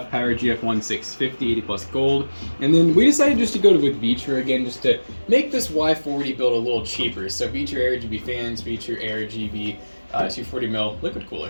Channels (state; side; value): inverted; both; correlation -1.00